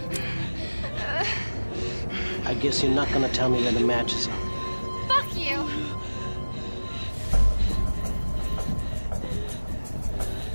I guess you're not gonna tell me where the matches are. Fuck you!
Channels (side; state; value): both; inverted; correlation -1.00